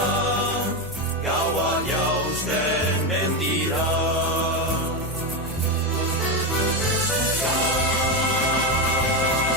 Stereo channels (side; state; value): both; normal; correlation 0.12